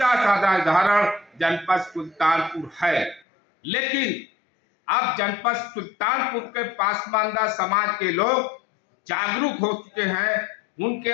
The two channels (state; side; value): drops out; right; at 3.2 s